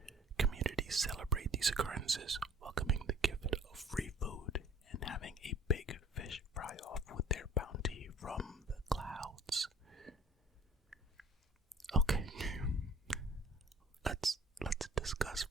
communities celebrate these occurrences, welcoming the gift of free food and having a big fish fry-off with their bounty from the clouds. Okay, let's discuss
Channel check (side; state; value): both; normal; correlation 0.50